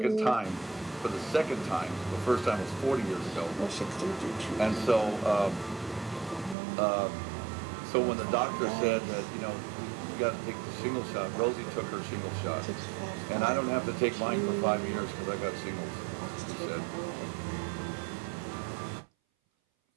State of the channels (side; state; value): left; drops out; at 6.6 s